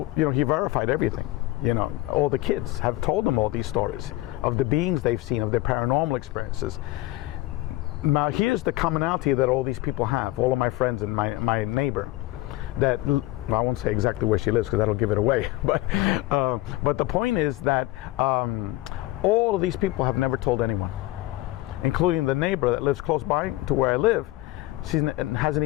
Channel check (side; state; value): right; quieter; 17.9 dB